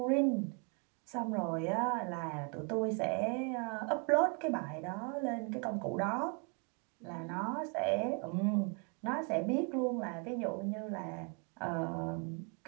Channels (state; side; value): quieter; left; 35.2 dB